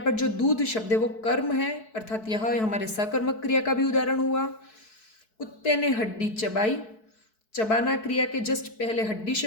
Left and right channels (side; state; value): right; late; 4.6 ms